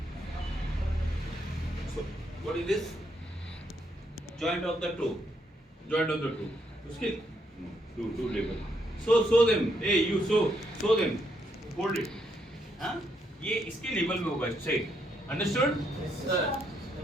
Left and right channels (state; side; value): normal; both; correlation 0.76